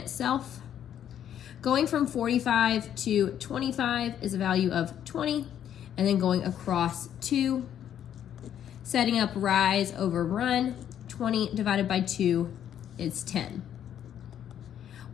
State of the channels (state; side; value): quieter; right; 10.0 dB